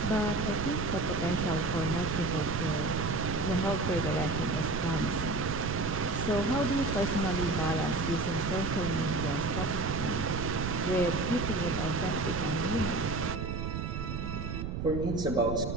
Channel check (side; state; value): right; noise; rumble, 4 dB below the sound